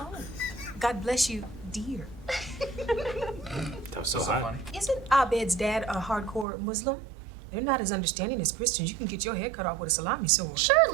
God bless you, dear. That was so hot. Isn't Abed's dad a hardcore Muslim? They're not as understanding as Christians. You can get your head cut off with a salami sword.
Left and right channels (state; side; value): drops out; left; at 6.5 s